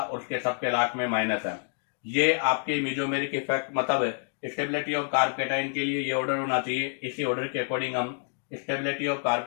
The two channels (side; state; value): right; silent; 58 dB below the other